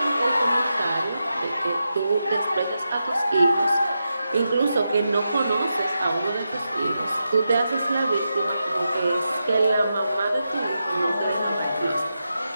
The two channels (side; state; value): both; inverted; correlation -0.88